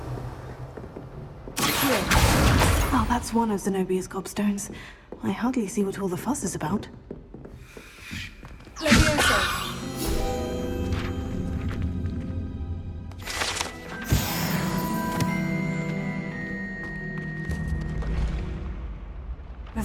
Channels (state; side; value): identical; both; correlation 1.00